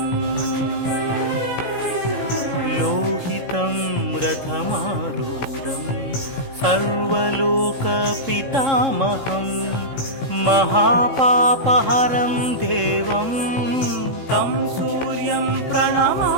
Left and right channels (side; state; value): right; late; 16 ms